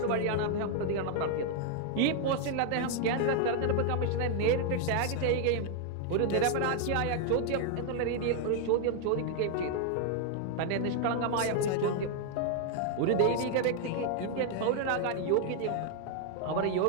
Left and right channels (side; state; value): both; different; correlation 0.00